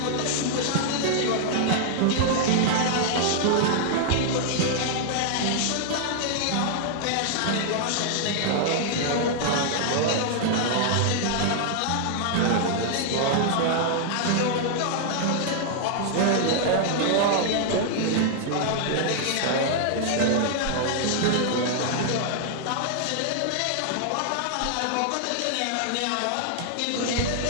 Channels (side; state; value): both; different; correlation -0.01